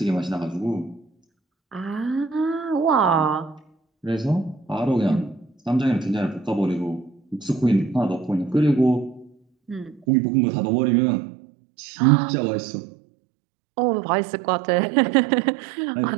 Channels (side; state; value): left; drops out; at 10.1 s